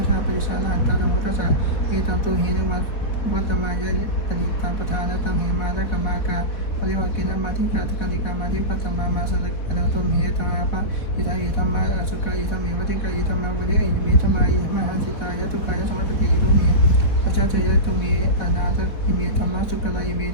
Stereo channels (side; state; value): right; late; 4.1 ms